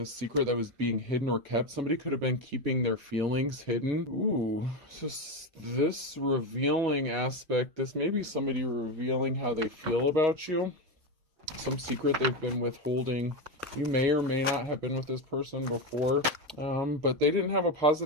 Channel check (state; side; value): late; left; 6.6 ms